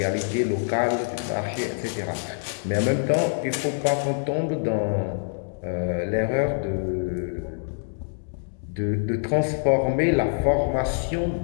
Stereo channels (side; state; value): right; silent; digital silence